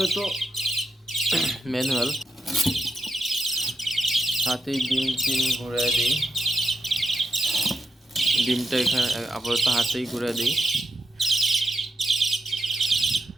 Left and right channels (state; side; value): normal; both; correlation 0.83